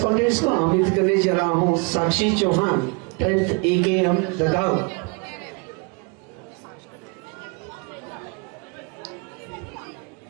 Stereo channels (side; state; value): left; quieter; 32.7 dB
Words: contest को आमंत्रित करने जा रहा हूँ साक्षी चौहान 10th AKM ददाव।